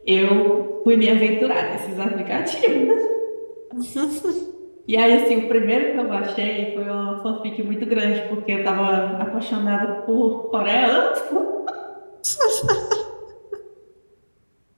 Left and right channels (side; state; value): both; inverted; correlation -1.00